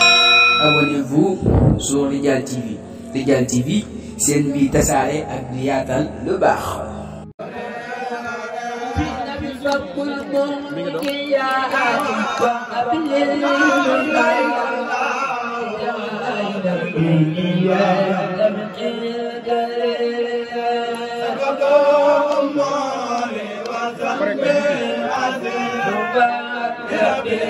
Abonnez-vous sur Radial TV. Radial TV, c'est une vie tasaare ak di yaatal lu baax.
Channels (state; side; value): identical; both; correlation 1.00